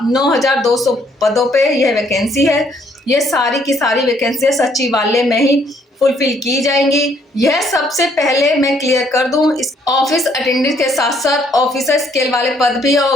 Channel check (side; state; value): both; normal; correlation 0.67